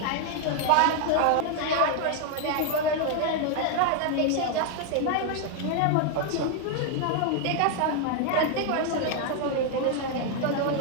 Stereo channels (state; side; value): different; both; correlation 0.00